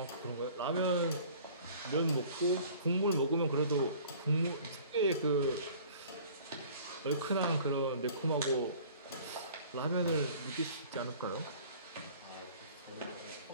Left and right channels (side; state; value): both; inverted; correlation -0.49